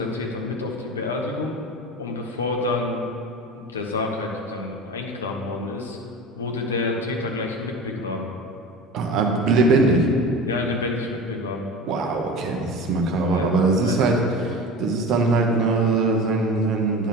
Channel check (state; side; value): normal; both; correlation 0.33